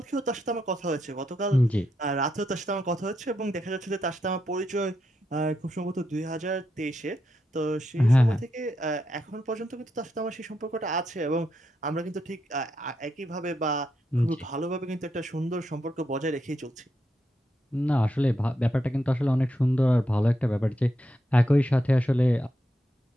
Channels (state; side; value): normal; both; correlation 0.83